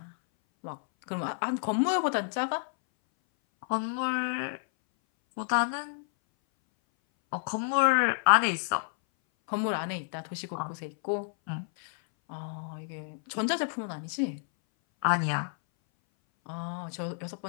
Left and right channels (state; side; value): silent; right; 58 dB below the other